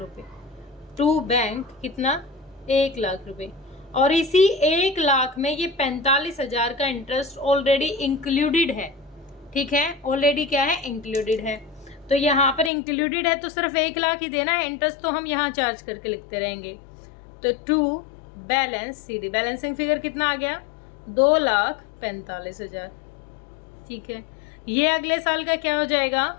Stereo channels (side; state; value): right; drops out; at 12.7 s